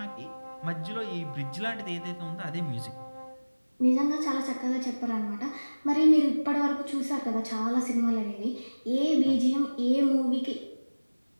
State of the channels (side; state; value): both; inverted; correlation -1.00